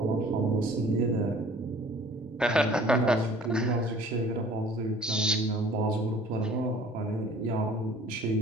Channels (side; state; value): both; normal; correlation 0.51